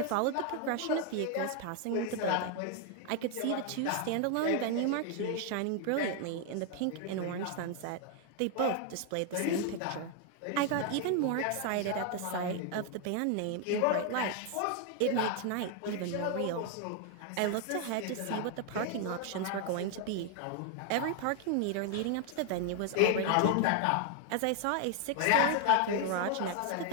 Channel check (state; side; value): different; both; correlation 0.00